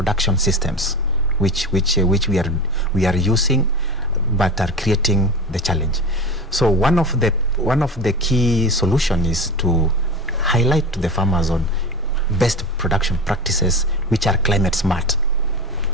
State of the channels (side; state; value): both; normal; correlation 0.28